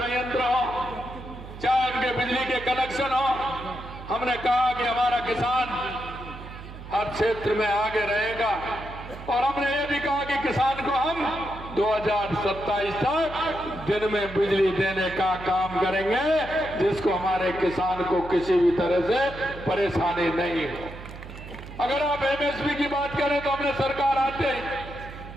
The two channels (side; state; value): right; noise; hum, 13 dB below the sound